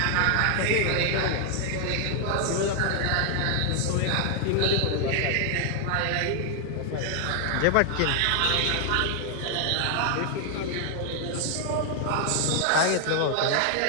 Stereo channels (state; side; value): different; both; correlation 0.00